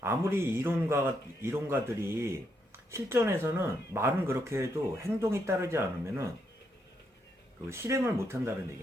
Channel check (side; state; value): both; normal; correlation 0.78